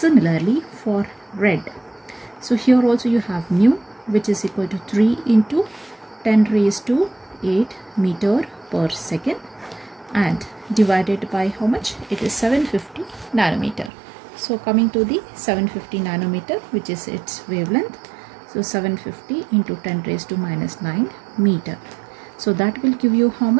for red, so here also you have nu, which is equal to 3 into 10 raised to 8 meter per second, and divided by how much? It is 750 nanometer. So coming to the 750 nanometer, which is its wavelength, so 750 into 10 raised to minus 9 meter. So that will give you how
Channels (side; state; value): left; drops out; at 13.9 s